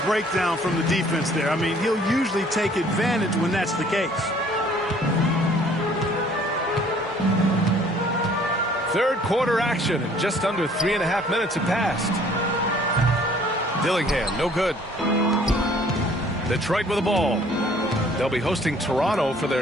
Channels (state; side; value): normal; both; correlation 0.57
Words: breakdown from the defense there. I mean, he'll usually take advantage when that's the case. Third quarter action, and just under 3.5 minutes have passed. Dillingham, no good. Detroit with the ball. They'll be hosting Toronto for their